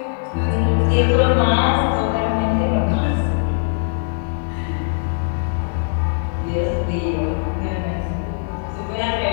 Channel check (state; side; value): silent; right; digital silence